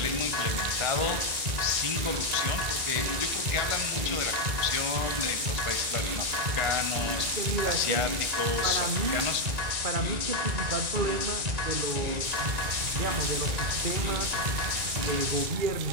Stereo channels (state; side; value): late; left; 2.7 ms